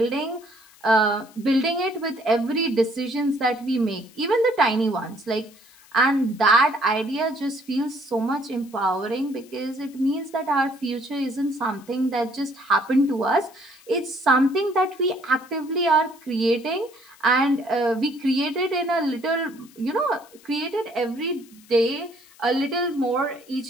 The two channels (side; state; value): left; noise; hiss, 26 dB below the sound